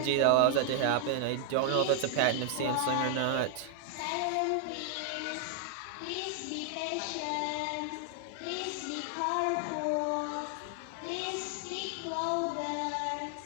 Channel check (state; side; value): different; both; correlation 0.00